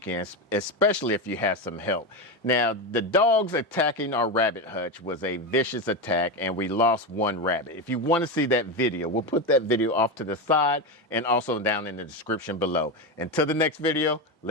especially if you have some help. Now, the dogs attacking our rabbit hutch was a vicious attack and we lost one rabbit. If you want to see that video, we'll put that video off to the side and also down in the description below. Until the next video,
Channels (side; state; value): both; normal; correlation 0.15